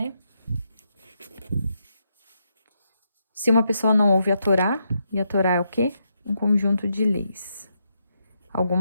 Se uma pessoa não ouve a Torá, e a Torá é o quê? Um conjunto de leis.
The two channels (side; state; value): both; inverted; correlation -0.81